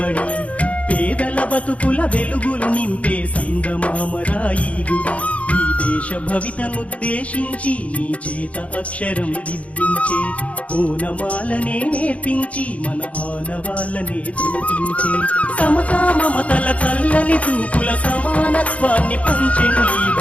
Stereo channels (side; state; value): right; late; 0.065 ms